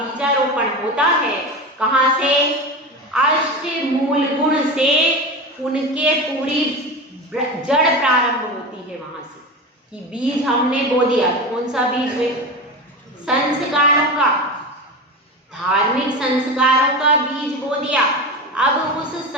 होता है कहाँ से? अष्ट मूल गुण से उनके पूरी जड़ प्रारंभ होती है वहां से, कि बीज हमने बो दिया। कौन सा बीज है? संस्कारों का, धार्मिक संस्कारों का बीज बो दिया। अब उस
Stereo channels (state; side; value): normal; both; correlation 0.25